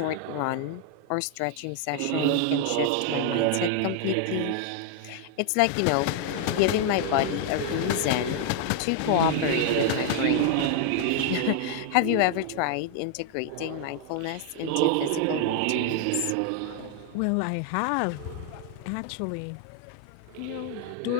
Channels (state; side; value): different; both; correlation 0.00